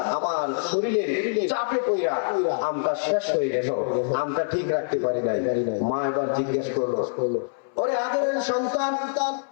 আমার শরীরের চাপে পইরা আমটা শেষ হয়ে গেল, আমটা ঠিক রাখতে পারি নাই। মা এবার জিজ্ঞেস করলো, ওরে আদরের সন্তান,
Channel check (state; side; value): silent; right; 62 dB below the other